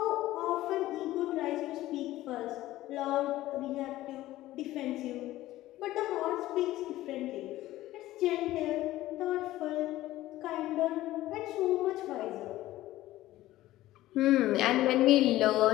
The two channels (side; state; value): right; quieter; 15.7 dB